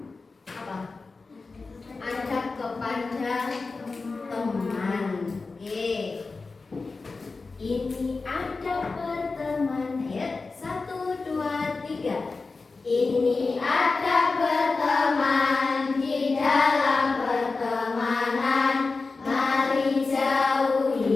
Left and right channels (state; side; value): quieter; right; 4.0 dB